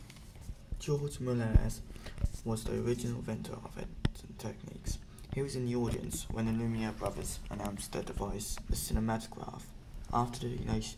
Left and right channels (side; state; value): both; identical; correlation 1.00